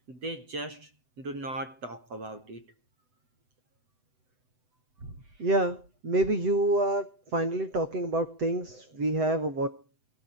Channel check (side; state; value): left; late; 7.9 ms